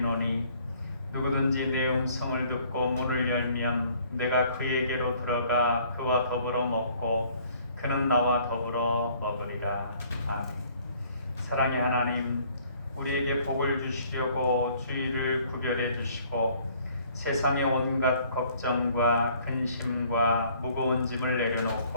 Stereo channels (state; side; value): inverted; both; correlation -0.59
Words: 누구든지 내 음성을 듣고 문을 열면 내가 그에게로 들어가 그와 더불어 먹고 그는 나와 더불어 먹으리라. 아멘. 사랑의 하나님, 우리에게 복을 주시려고 주일을 구별해 주시고 세상의 온갖 걱정과 근심과 무거운 짐을